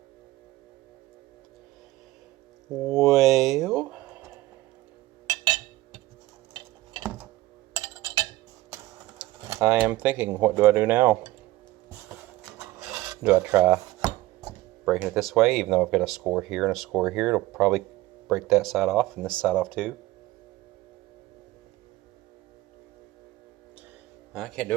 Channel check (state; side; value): quieter; left; 17.7 dB